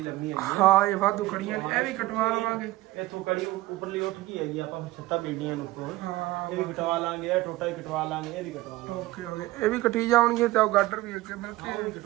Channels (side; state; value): left; quieter; 18.0 dB